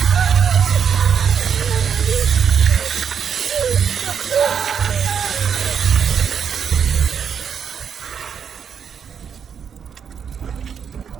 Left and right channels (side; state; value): left; quieter; 7.4 dB